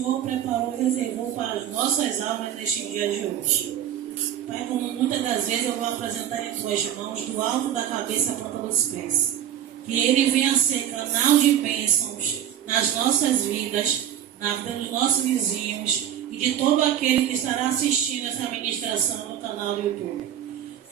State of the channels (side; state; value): left; quieter; 10.6 dB